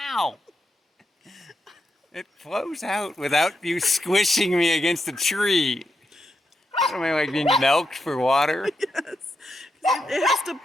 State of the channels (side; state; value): both; normal; correlation 0.84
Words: It flows out without you squishing me against a tree. What am I, like being milked for water? Yes. It has to